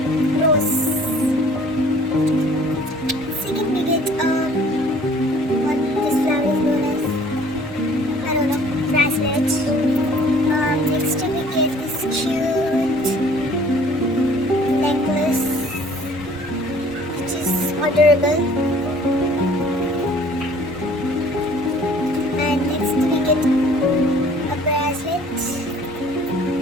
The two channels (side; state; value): both; normal; correlation 0.53